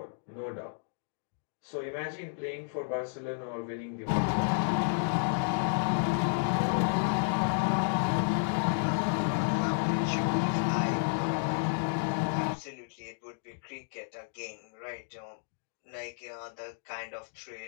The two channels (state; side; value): silent; right; digital silence